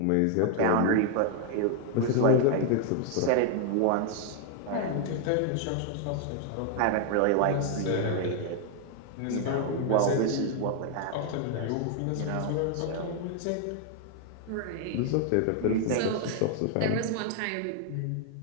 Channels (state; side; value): different; both; correlation 0.00